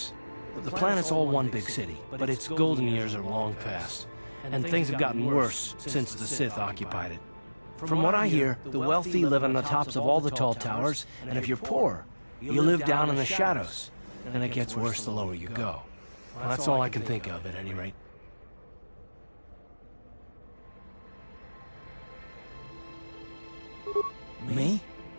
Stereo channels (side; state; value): both; inverted; correlation -1.00